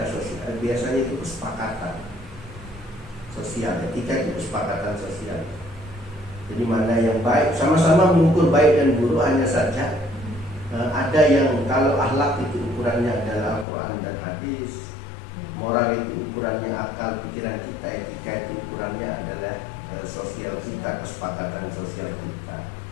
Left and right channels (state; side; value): drops out; right; at 13.7 s